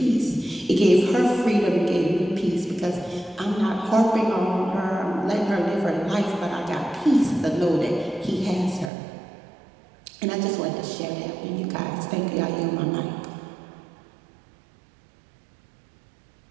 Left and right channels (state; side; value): drops out; left; at 8.9 s